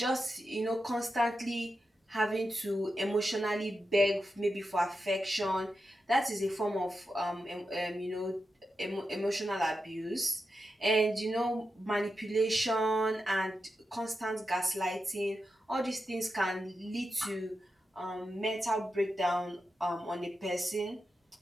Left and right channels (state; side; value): normal; both; correlation 0.89